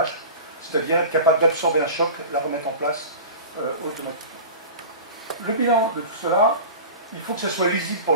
c'est-à-dire être capable d'absorber un choc, la remettre en place automatiquement. Le bilan de tout cela, il faut que ce soit lisible pour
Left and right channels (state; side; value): inverted; both; correlation -0.34